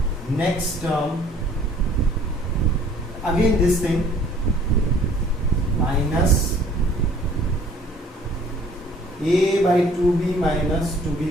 next term. Again, this thing minus a by 2b minus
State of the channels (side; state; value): both; normal; correlation 0.55